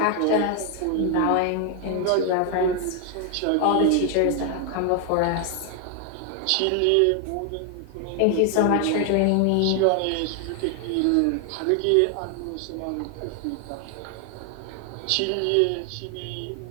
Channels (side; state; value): both; different; correlation 0.00